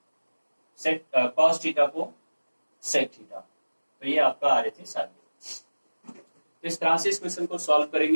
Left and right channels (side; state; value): both; inverted; correlation -1.00